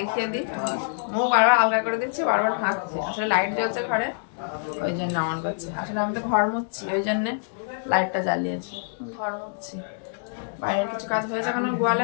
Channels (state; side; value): silent; right; digital silence